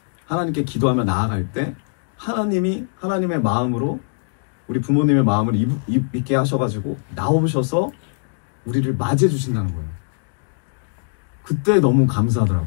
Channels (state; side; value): silent; right; digital silence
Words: 하나님께 기도하며 나아갈 때 하나님의 마음으로 우리 부모님의 마음을 있게 하셔가지고 나오셔서 우리를 맞이해 주신다는 거예요. 그때 너무